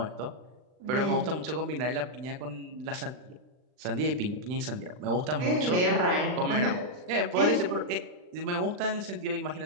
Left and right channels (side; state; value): left; late; 39 ms